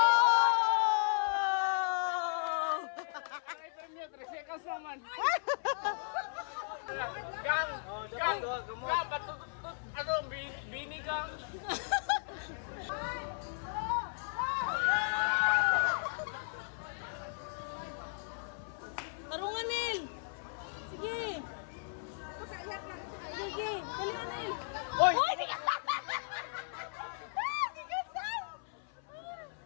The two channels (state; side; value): silent; right; 54 dB below the other